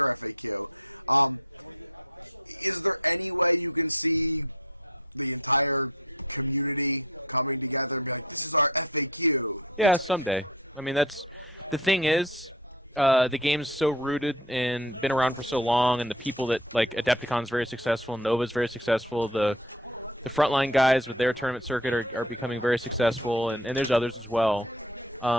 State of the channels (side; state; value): both; normal; correlation 0.35